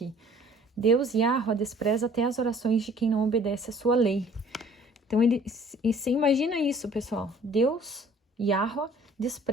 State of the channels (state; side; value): normal; both; correlation 0.53